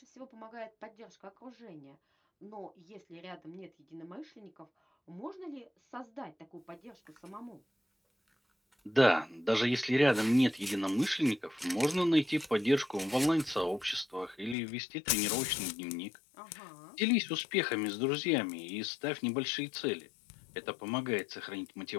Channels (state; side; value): drops out; right; at 14.6 s